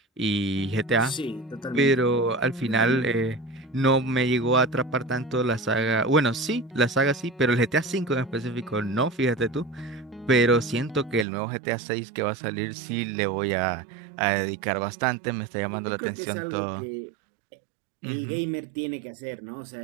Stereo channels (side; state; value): left; drops out; at 11.2 s